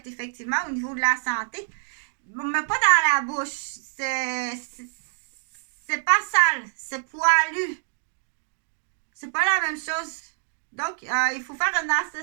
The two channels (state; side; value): silent; left; digital silence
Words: effectivement au niveau de la santé, mais pas dans la bouche. C'est pas sale, c'est poilu. C'est pas la même chose. Donc, il faut faire une